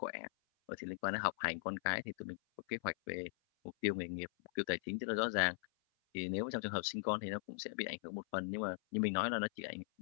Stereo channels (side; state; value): right; silent; 51 dB below the other